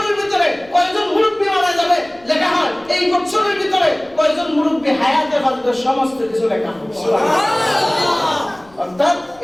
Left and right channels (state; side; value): noise; left; rumble, 28 dB below the sound